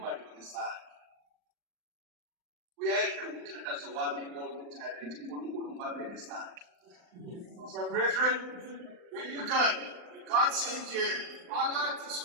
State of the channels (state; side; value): late; left; 39 ms